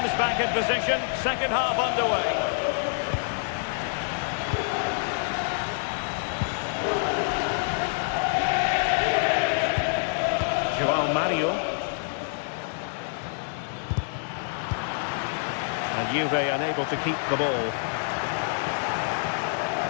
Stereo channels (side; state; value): right; silent; digital silence